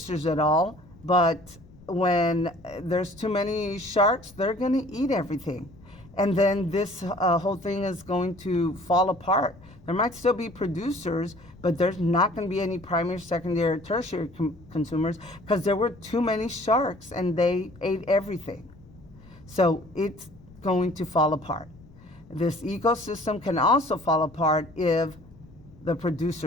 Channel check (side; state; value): left; noise; rumble, 23 dB below the sound